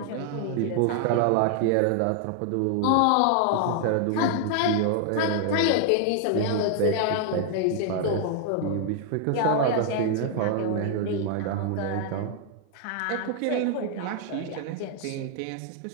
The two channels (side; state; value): both; different; correlation 0.00